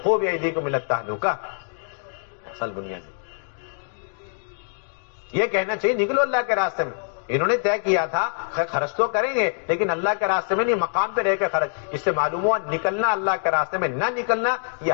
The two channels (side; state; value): right; silent; digital silence